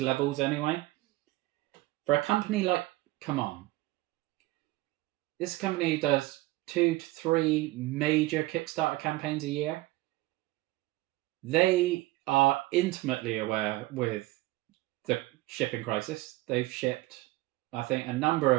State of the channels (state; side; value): quieter; left; 19.2 dB